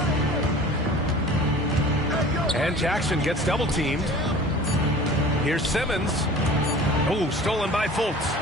And Jackson gets double teamed. Here's Simmons. Oh, stolen by Fultz.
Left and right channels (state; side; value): normal; both; correlation 0.43